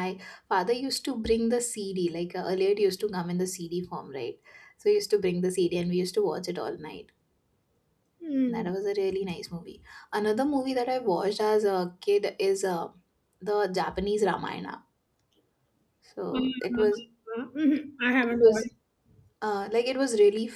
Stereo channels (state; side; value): identical; both; correlation 1.00